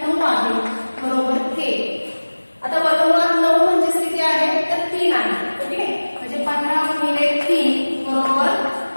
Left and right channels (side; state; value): both; inverted; correlation -1.00